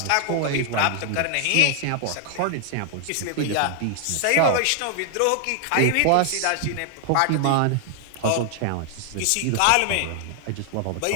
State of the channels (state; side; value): different; both; correlation 0.00